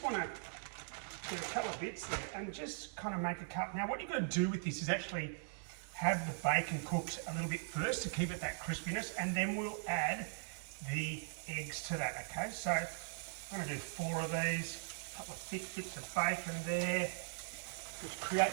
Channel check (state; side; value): silent; left; digital silence